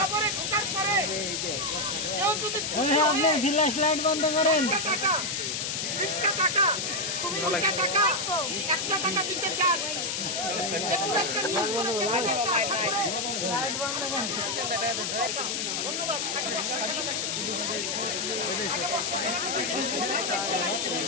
ঢোকার পরে কেউ যদি বন্ধ করেন 20টা টাকা 20টা টাকা 1টা টাকা দিতে চান, যেগুলো একটা নিয়ম করেছে একটা আশা করে ধন্যবাদ। আগে বর্ষ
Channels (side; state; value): left; noise; hiss, 1 dB below the sound